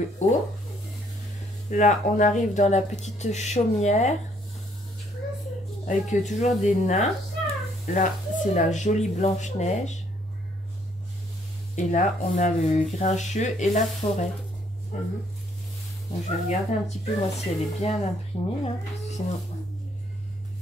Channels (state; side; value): normal; both; correlation 0.67